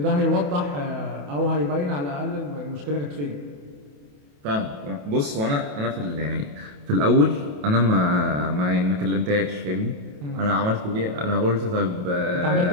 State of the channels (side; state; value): left; late; 28 ms